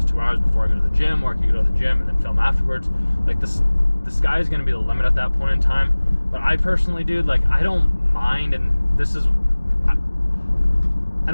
2 hours before I go to the gym, or I can go to the gym and then film afterwards. Like, the sky is going to be the limit at that point in time. But I personally, dude, like, I don't mind, and this is, I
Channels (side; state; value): both; inverted; correlation -1.00